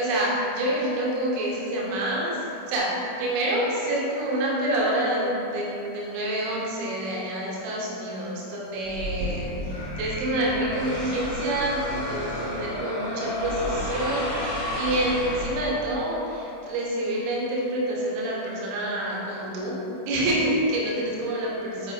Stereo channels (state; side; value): late; left; 26 ms